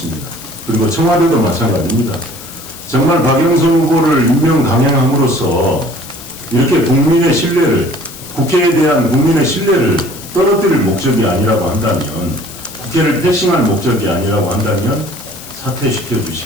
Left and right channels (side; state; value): left; noise; hiss, 15 dB below the sound